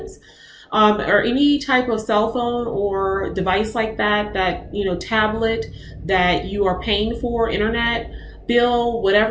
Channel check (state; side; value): identical; both; correlation 1.00